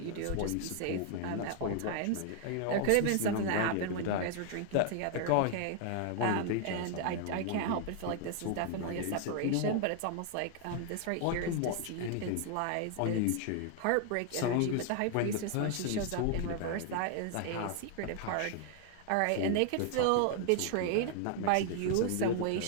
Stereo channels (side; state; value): both; different; correlation 0.00